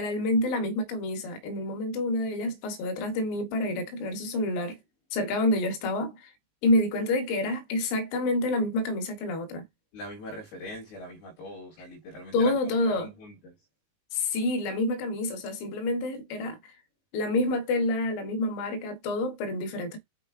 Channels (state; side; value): late; right; 19 ms